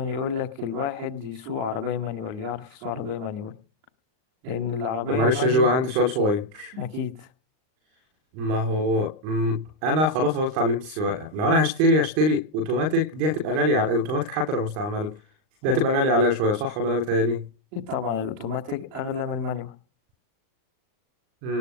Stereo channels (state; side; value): late; left; 39 ms